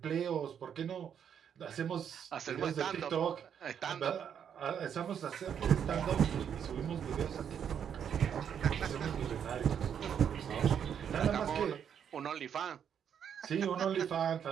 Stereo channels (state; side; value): quieter; left; 8.3 dB